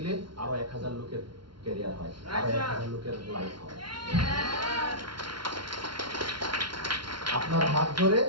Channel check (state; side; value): late; left; 0.73 ms